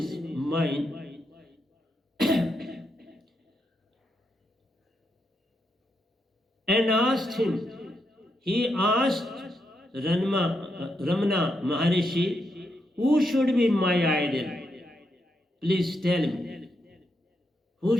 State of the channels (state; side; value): normal; both; correlation 0.82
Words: mind, and asked him. He asked Ramana Maharishi, who should be my idol? Please tell me, who